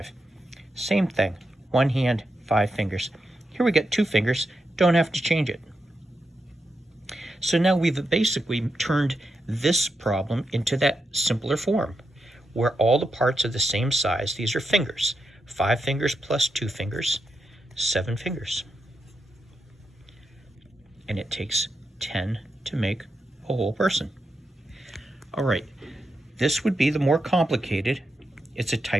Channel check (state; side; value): normal; both; correlation 0.85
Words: Same thing, 1 hand, 5 fingers. Here we get 2 fingers, don't have to change it. So now we've basically turned this problem into that simpler form, where all the parts are the same size. These are fingers. 5 fingers plus 2 fingers, 7 fingers. And it takes 10 to make a whole person. All right, this would be the more complicated. It's a